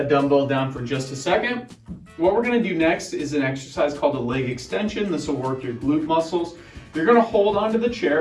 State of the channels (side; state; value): both; identical; correlation 1.00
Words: dumbbell down for just a second. What we're gonna do next is an exercise called a leg extension. This will work your glute muscles. You're gonna hold onto the